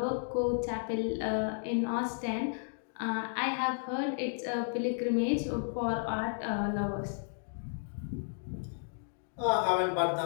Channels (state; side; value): silent; right; digital silence